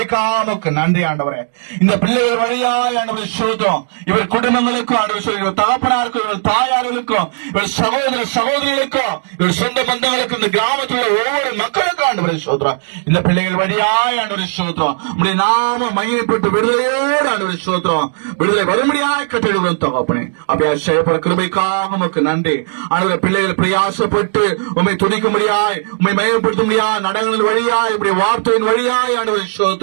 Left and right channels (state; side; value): silent; left; digital silence